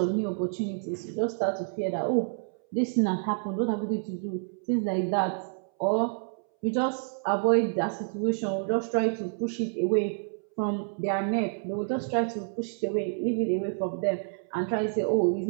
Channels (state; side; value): silent; left; 59 dB below the other